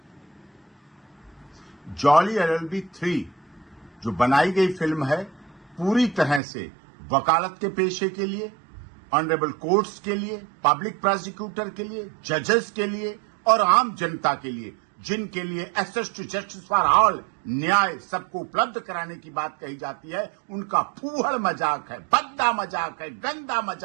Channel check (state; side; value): drops out; left; at 6.4 s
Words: जॉली LLB 3 जो बनाई गई फिल्म है, पूरी तरह से वकालत के पेशे के लिए, ऑनरेबल कोर्ट्स के लिए, पब्लिक प्रोसिक्यूटर के लिए, जजेस के लिए और आम जनता के लिए, जिनके लिए access to justice for all, न्याय सबको उपलब्ध कराने की बात कही जाती है, उनका फूहड़ मजाक है, भद्दा मजाक है, गंदा